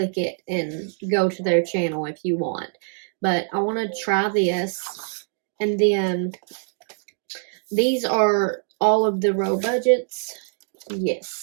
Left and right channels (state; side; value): silent; left; digital silence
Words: it and go to their channel if you want. But I want to try this. And then these are all of the Row Budgets.